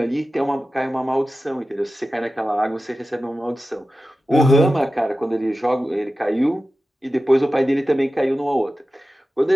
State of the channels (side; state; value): both; normal; correlation 0.94